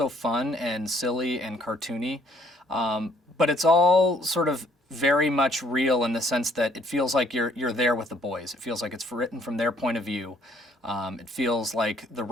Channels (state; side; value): normal; both; correlation 0.63